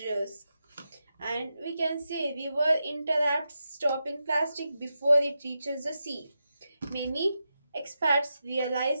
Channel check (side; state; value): both; inverted; correlation -0.88